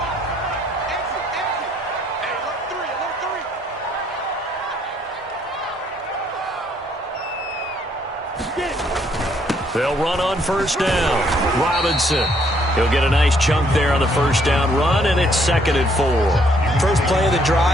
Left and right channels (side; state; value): both; normal; correlation 0.68